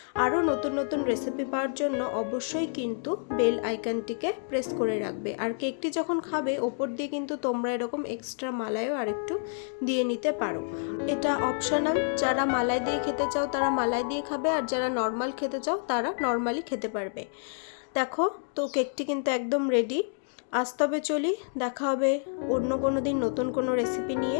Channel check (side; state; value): right; silent; digital silence